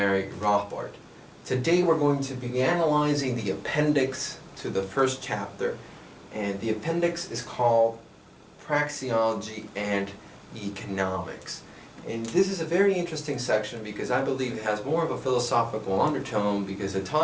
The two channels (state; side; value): identical; both; correlation 1.00